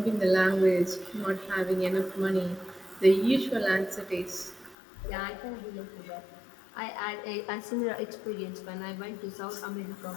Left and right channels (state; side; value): drops out; right; at 4.8 s